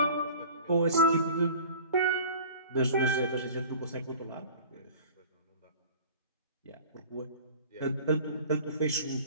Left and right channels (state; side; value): inverted; both; correlation -0.44